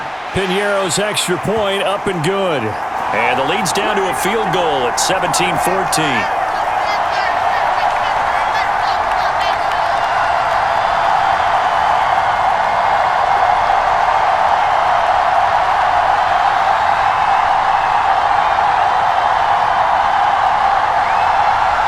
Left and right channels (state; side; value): identical; both; correlation 1.00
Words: Piñeiro's extra point up and good. And the lead's down to a field goal at 17-14.